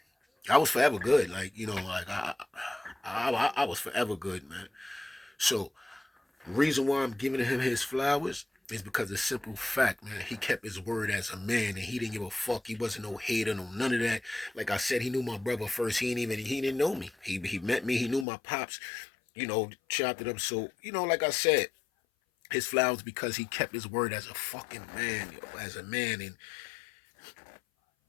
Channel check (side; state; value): right; drops out; at 18.2 s